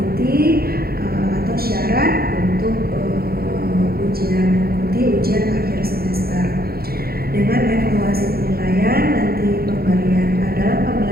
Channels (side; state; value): left; late; 0.44 ms